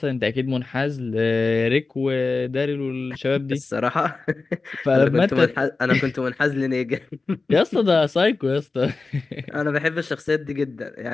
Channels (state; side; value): quieter; right; 3.9 dB